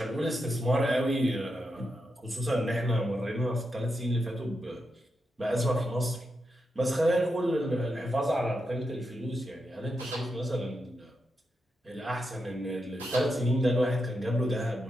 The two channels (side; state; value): both; normal; correlation 0.86